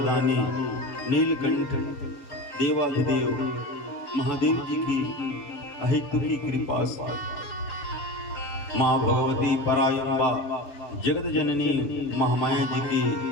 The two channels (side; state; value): right; late; 7.7 ms